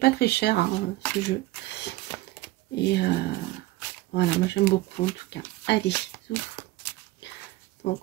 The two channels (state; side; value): quieter; left; 18.2 dB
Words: très cher, hein, ce jeu. Et voilà, moi j'aime beaucoup en tout cas. Allez, ouf.